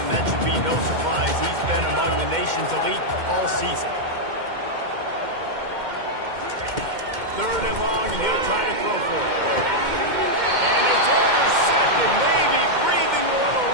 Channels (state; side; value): late; left; 2.1 ms